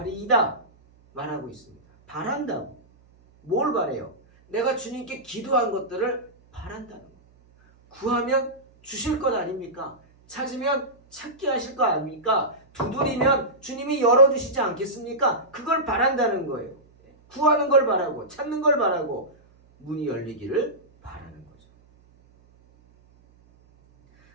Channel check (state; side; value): noise; right; hum, 30 dB below the sound